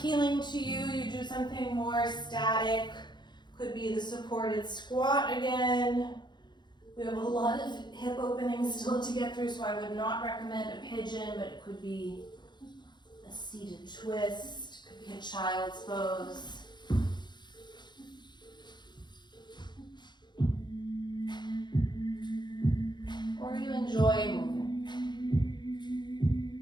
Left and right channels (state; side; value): late; right; 0.21 ms